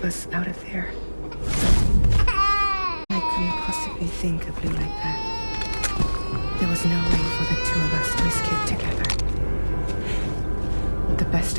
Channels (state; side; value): inverted; both; correlation -1.00